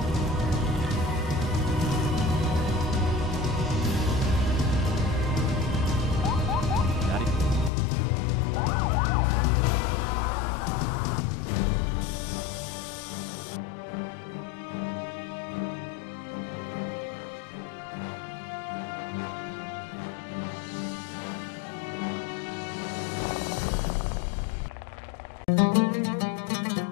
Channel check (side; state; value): right; drops out; at 7.7 s